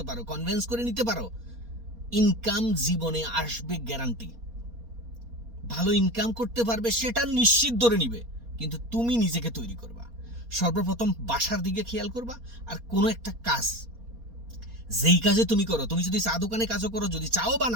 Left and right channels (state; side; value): late; left; 4.2 ms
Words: পারো, কনভিন্স করে নিতে পারো, ইনকাম জীবনে আসবে গ্যারান্টি। ভালো ইনকাম করতে পারবে সেটা নিশ্চিত ধরে নিবে, কিন্তু তুমি নিজেকে তৈরি করবা। সর্বপ্রথম ভাষার দিকে খেয়াল করবা। আর কোনো একটা কাজ, যেই কাজে তুমি করো, তুমি যদি চা দোকানে কাজও করো, যদি চাও